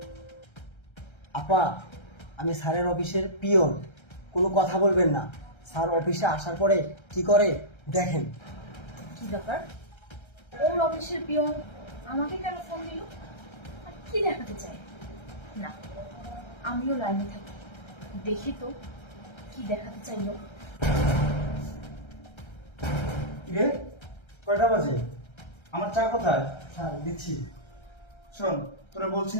আপা, আমি স্যারের অফিসের পিয়ন, কোনো কথা বলবেন না। স্যার অফিসে আসার পরে কি করে দেখেন। কি ব্যাপার? ওর অফিসের পিয়ন আমাকে কেন ফোন দিল? আর কি দেখাতে চায়? না, আমিও লাইনে থাকি, দেখি তো কি দেখাতে চাইলো। রে কয়টা বাজে? আমার চা কোথায়? স্যার দিচ্ছি। শোন, তোরা বলছি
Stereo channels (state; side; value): late; right; 1.3 ms